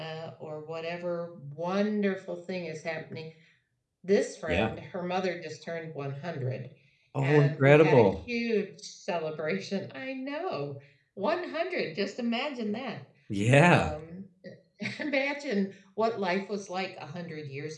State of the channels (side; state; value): both; identical; correlation 1.00